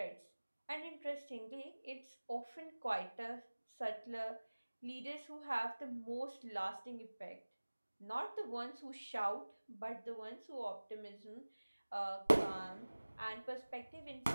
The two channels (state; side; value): inverted; both; correlation -1.00